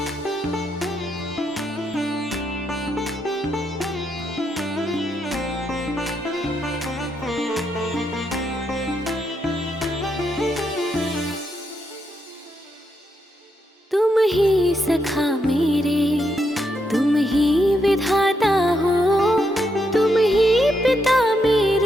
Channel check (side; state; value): both; normal; correlation 0.80